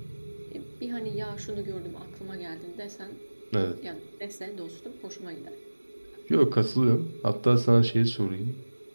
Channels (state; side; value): inverted; both; correlation -1.00